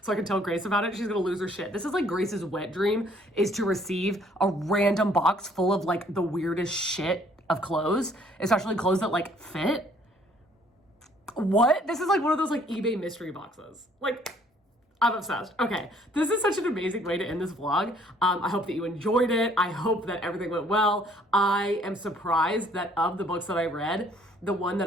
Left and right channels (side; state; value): both; normal; correlation 0.61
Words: so I can tell Grace about it. She's gonna lose her shit. This is like Grace's wet dream, is to receive a random box full of like the weirdest shit of clothes, especially clothes that like fit. What? This is like one of those like eBay mystery boxes. Like, I'm obsessed. Okay, this is such an amazing way to end this vlog. I hope that you enjoyed it. I hope that everything went well. I am surprised that of the books that I read, the one that